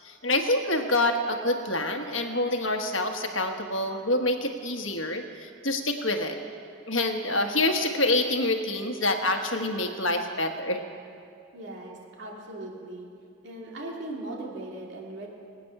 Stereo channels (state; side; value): normal; both; correlation -0.16